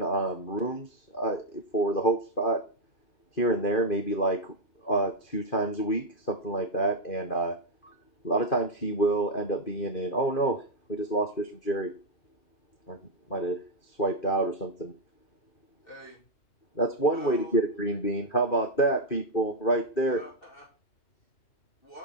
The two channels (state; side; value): late; right; 2.5 ms